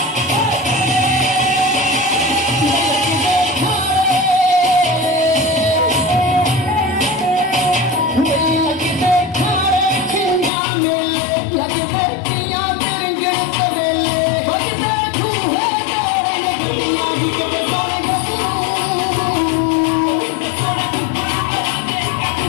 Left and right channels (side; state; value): right; drops out; at 10.5 s